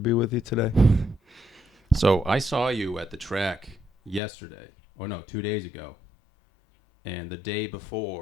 with you today. So, I saw you at the track yesterday, or no, 2 days ago. And the day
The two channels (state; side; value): drops out; right; at 4.2 s